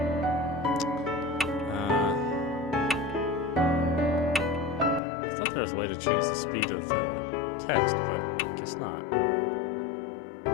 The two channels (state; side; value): drops out; right; at 5.0 s